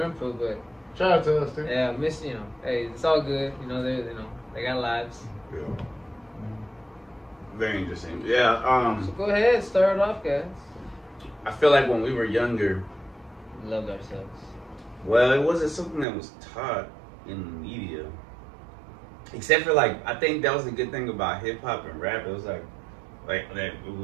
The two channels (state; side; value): drops out; left; at 16.1 s